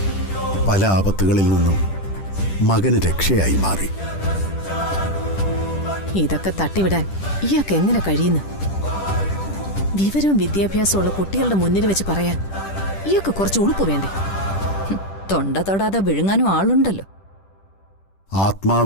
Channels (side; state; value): right; late; 10 ms